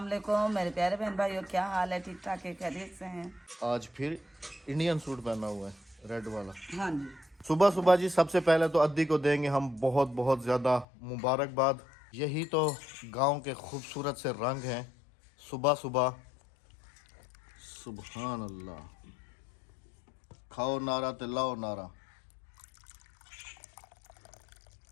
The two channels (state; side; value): drops out; right; at 10.9 s